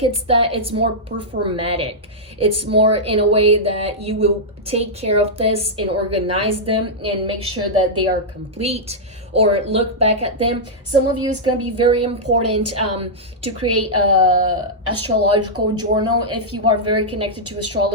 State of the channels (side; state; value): both; normal; correlation -0.09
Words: it's that. It's more performatic. It's more in a way that you will take care of this and organize them and make sure that they are complete, or look back at them. Some of you, it's going to be very important to create a astrological journal if you are very connected to